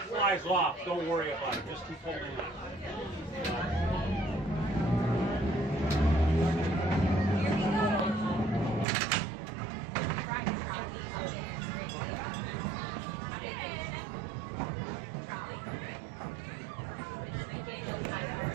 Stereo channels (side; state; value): left; drops out; at 8.8 s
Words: flies off, don't worry about it. Just keep holding on.